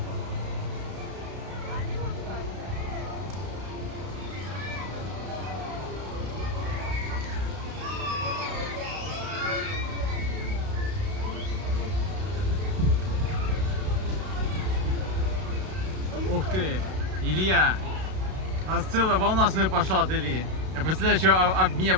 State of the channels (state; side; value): late; left; 32 ms